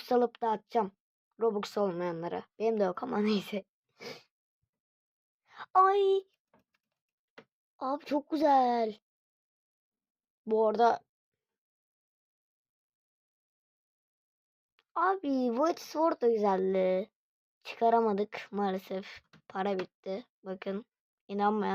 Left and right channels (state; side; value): identical; both; correlation 1.00